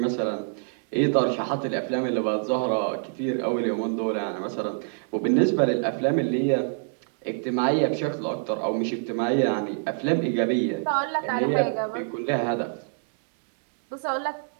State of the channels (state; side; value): silent; left; digital silence